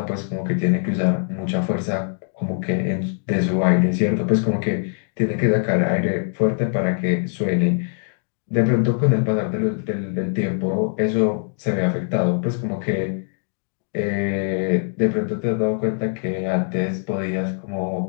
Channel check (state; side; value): silent; right; digital silence